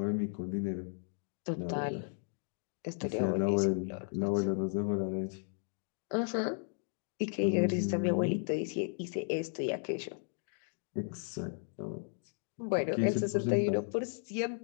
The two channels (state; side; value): silent; right; 55 dB below the other